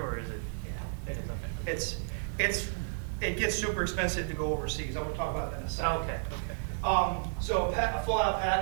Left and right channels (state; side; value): silent; left; digital silence